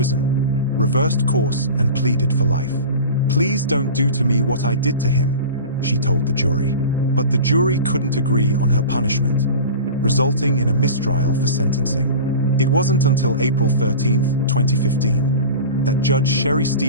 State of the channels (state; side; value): inverted; both; correlation -0.34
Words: reversed course and pleaded for life. "Please don't do to me what I did to him," she told the jury. But the jury couldn't agree on her punishment, resulting in a mistrial for sentencing. It wasn't until April 13, 2015, that Judge Sherry